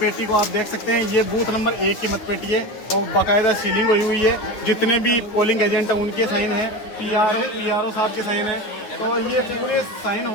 को आप देख सकते हैं, ये बूथ नंबर 1 की मतपेटी है और बाकायदा सीलिंग हुई है। जितने भी पोलिंग एजेंट हैं उनके साइन है, पीआरओ साहब के साइन है। तो ये पूरे साइन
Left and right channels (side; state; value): right; late; 9.6 ms